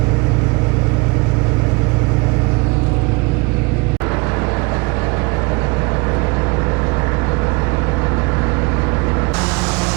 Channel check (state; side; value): quieter; left; 27.5 dB